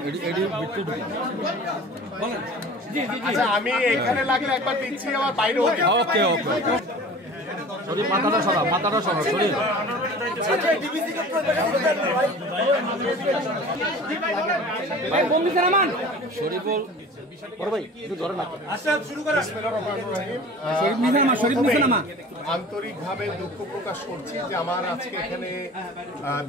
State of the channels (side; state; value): both; normal; correlation 0.41